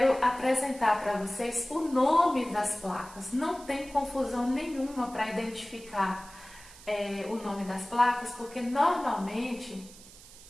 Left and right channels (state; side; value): noise; right; hiss, 20 dB below the sound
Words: apresentar para vocês o nome das placas. Não tem confusão nenhuma para identificar o nome das placas, porque normalmente